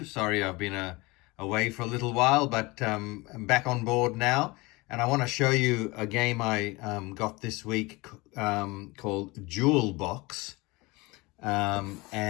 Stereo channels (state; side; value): quieter; right; 23.6 dB